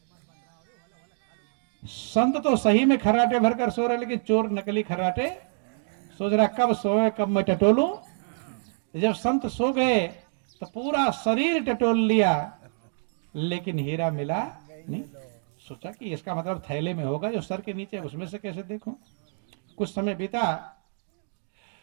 संत तो सही में खर्राटे भरकर सो रहे, लेकिन चोर नकली खर्राटे सोच रहा कब सोए कब मैं टटोलूं। जब संत सो गए तो पूरा शरीर टटोल लिया, लेकिन हीरा मिला नहीं। सोचा कि इसका मतलब थैले में होगा, जो सर के नीचे, उसमें से कैसे देखूं। कुछ समय बीता,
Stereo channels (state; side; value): silent; left; digital silence